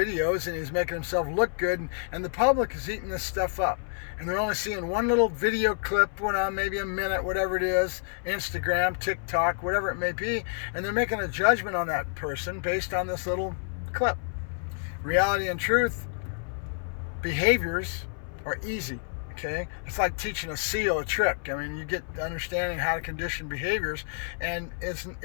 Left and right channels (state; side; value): silent; right; 58 dB below the other